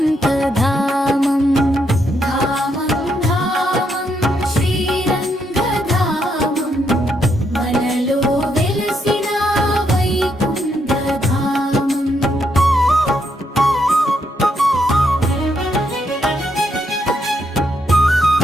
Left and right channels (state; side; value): normal; both; correlation 0.77